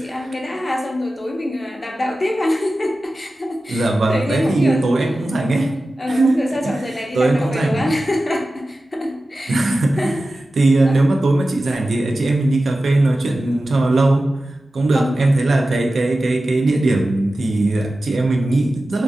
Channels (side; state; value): both; normal; correlation 0.94